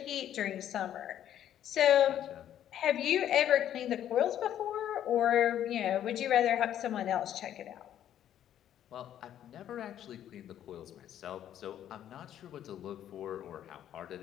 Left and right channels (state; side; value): quieter; right; 10.9 dB